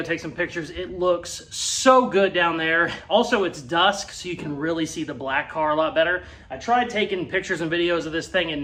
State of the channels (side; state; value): both; identical; correlation 1.00